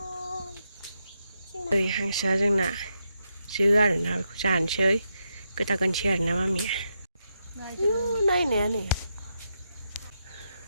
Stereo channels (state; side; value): inverted; both; correlation -0.83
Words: नै हांसोआ जोंना जो आरोना बेखौ जानोसै गोदागोनसै आरोना मामिया नायनाया नै